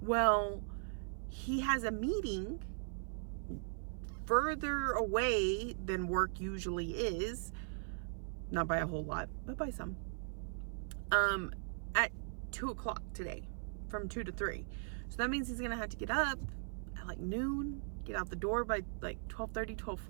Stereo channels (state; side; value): silent; left; 52 dB below the other